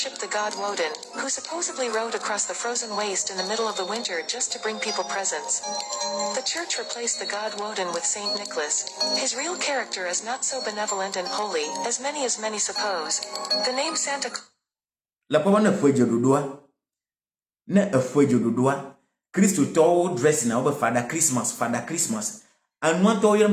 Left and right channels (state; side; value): identical; both; correlation 1.00